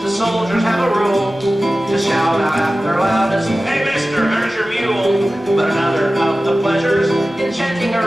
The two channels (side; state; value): both; normal; correlation 0.96